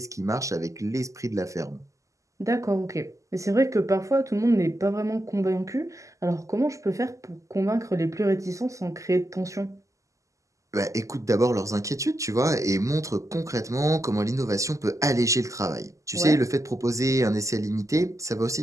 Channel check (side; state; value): left; late; 0.16 ms